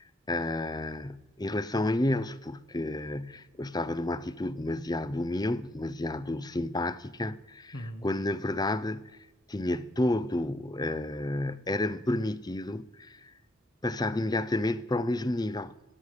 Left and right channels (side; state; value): both; normal; correlation 0.71